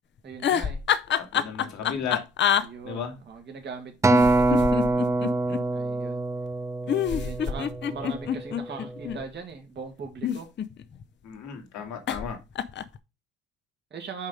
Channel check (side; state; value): both; normal; correlation 0.60